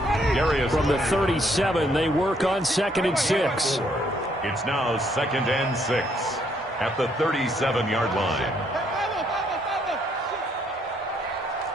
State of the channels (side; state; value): both; normal; correlation 0.70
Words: From the 37, they work on 2nd and 6. It's now 2nd and 6 at the 37-yard line.